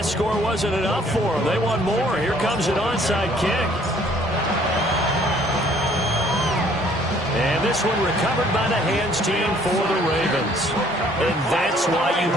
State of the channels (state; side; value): normal; both; correlation 0.60